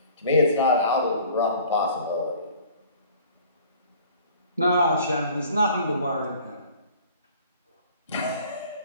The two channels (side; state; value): both; inverted; correlation -0.50